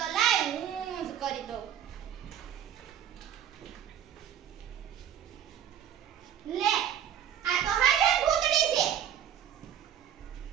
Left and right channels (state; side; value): quieter; left; 9.7 dB